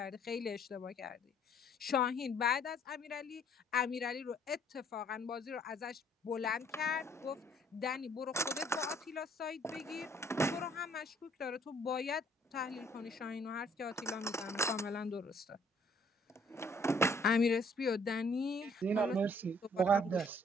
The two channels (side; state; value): both; normal; correlation 0.61